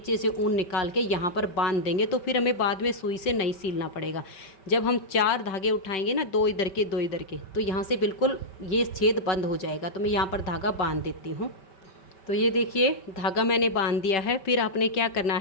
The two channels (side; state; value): right; late; 5.2 ms